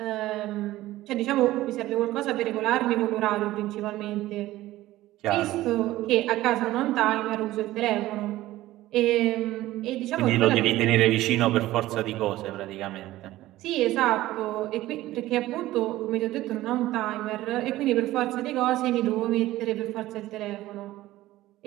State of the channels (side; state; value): left; quieter; 16.1 dB